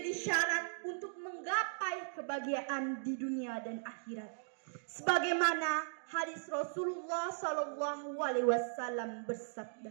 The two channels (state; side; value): silent; left; digital silence